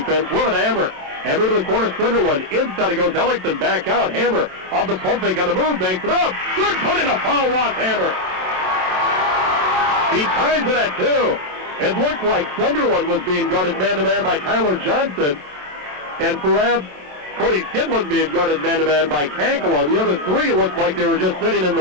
with an Hammer. Hammer to the corner, Sunderland. Inside it goes Ellickson, back out. Hammer off the pump fake on the move, banks it up. Good put in a foul, Ross Hammer. He ties it at two. It looked like Sunderland was being guarded man-to-man by Tyler Johnson, and perhaps Cody Skidland being guarded man-to-man by Kankala. The other three looked like they were just sitting in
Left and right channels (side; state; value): left; late; 27 ms